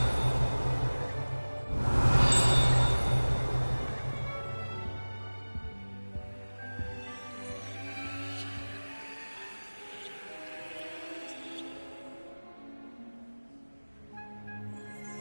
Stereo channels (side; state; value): both; inverted; correlation -1.00